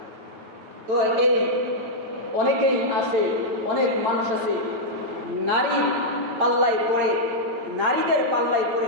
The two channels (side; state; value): left; late; 9.0 ms